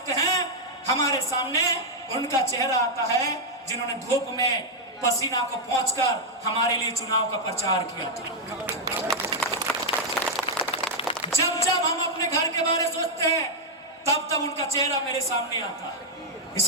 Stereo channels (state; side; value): normal; both; correlation -0.03